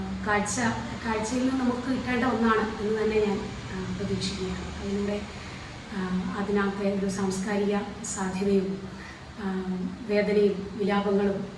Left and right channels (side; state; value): both; identical; correlation 1.00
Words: കാഴ്ചയിൽ നിന്ന് നമുക്ക് കിട്ടേണ്ട ഒന്നാണ് എന്ന് തന്നെ ഞാൻ പ്രതീക്ഷിക്കുകയാണ്. അതിലൂടെ അതിനകത്തെ ഒരു സാംസ്കാരിക സാധ്യതയും വേദനയും വിലാപങ്ങളും